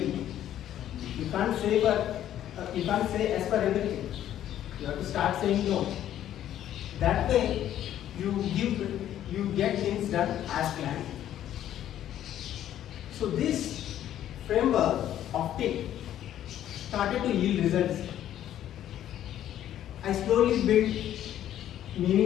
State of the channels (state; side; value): quieter; right; 11.6 dB